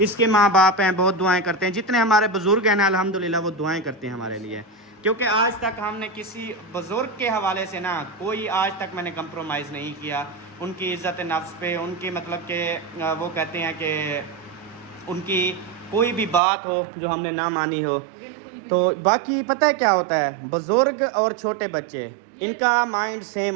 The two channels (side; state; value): left; drops out; at 16.4 s